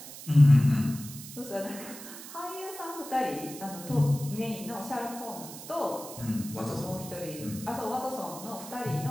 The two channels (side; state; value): right; noise; hiss, 13 dB below the sound